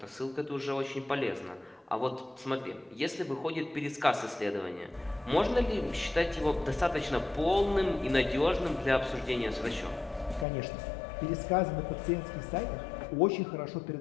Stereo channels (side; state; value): right; drops out; at 10.5 s